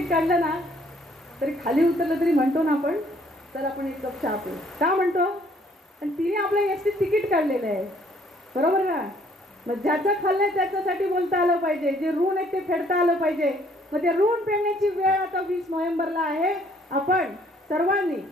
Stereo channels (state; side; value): normal; both; correlation 0.62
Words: काढलं ना तरी खाली उतरलं तरी म्हणतो ना आपण, तर आपण एक कप चहा पिऊ का म्हणतो? आणि तिने आपल्या एसटीत तिकीट काढलेलं आहे, बरोबर ना? मग ज्याचं खाल्लंय त्याच्यासाठी बोलता आलं पाहिजे. जे ऋण आहे ते फेडता आलं पाहिजे. मग ते ऋण फेडण्याची वेळ आता 20 नोव्हेंबरला आहे. आपण सर्वांनी